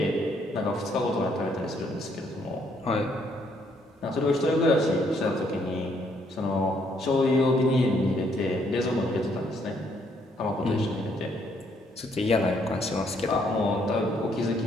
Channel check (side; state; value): both; normal; correlation 0.70